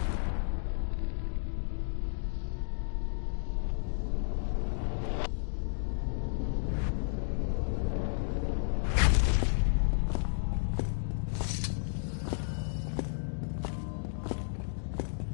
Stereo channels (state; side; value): silent; right; digital silence